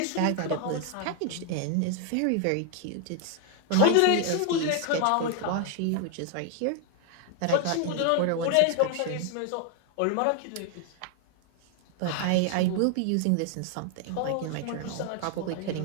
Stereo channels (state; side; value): different; both; correlation 0.00